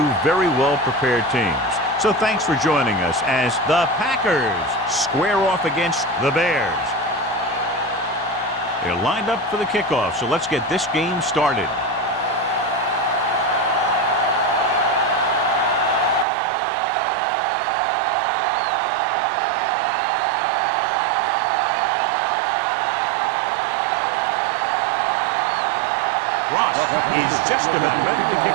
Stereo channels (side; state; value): left; drops out; at 16.2 s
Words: very well-prepared teams. So thanks for joining us as the Packers square off against the Bears. They're lined up for the kickoff, so let's get this game started. Ross is just about ready to kick